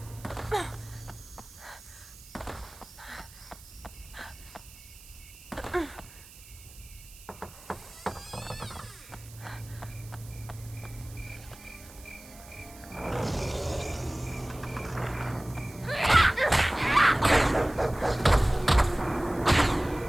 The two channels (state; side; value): noise; right; hiss, 20 dB below the sound